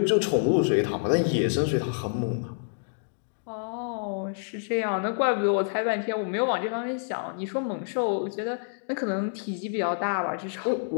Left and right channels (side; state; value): right; silent; digital silence